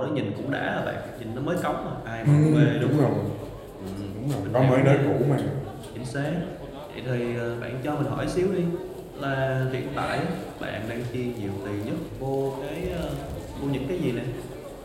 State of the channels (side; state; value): both; identical; correlation 1.00